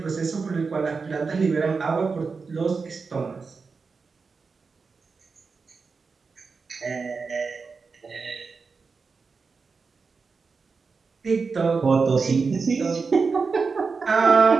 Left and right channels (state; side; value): quieter; left; 4.8 dB